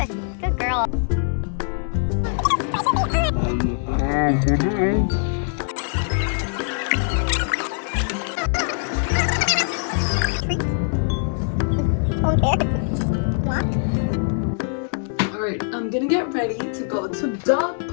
good girl. Alright, I'm gonna get ready to go to dog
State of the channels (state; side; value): silent; right; 64 dB below the other